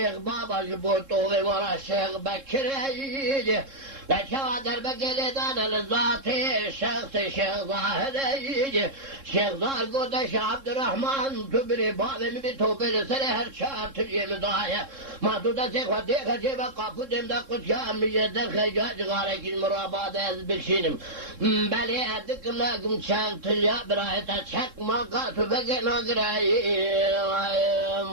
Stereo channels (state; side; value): late; left; 3.7 ms